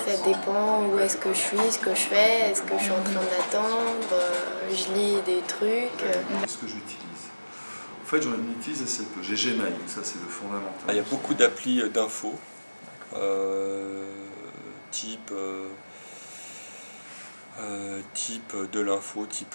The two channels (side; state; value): both; inverted; correlation -1.00